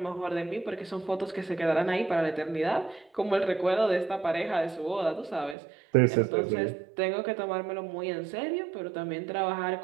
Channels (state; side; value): drops out; left; at 5.6 s